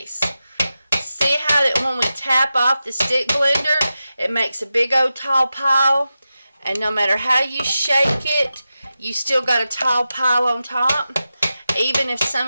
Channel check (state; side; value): inverted; both; correlation -0.92